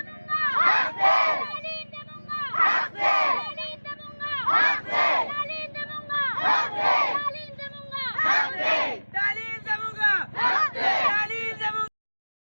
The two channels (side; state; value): both; inverted; correlation -1.00